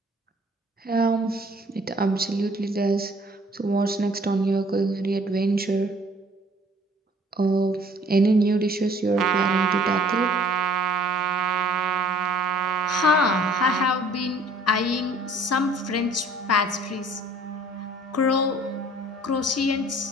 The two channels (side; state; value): both; normal; correlation 0.56